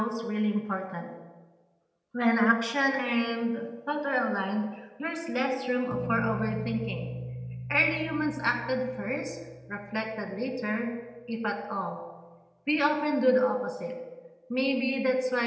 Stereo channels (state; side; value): identical; both; correlation 1.00